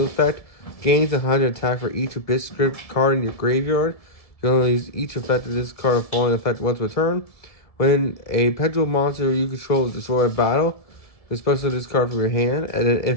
effect, gains 100 attack for each Abyss script card in your graveyard. You can only use each effect of this card falling effect once per turn. When a pendulum monster you control is destroyed by battle, you special this card from your hand, and then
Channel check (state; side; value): late; right; 1.7 ms